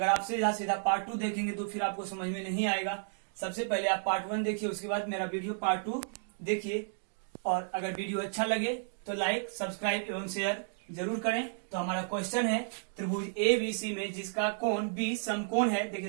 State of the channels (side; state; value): left; silent; digital silence